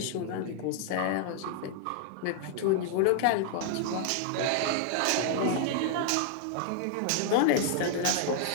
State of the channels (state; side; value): different; both; correlation 0.00